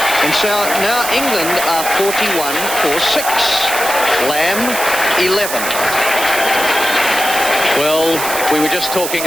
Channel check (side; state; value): right; noise; hiss, 5 dB below the sound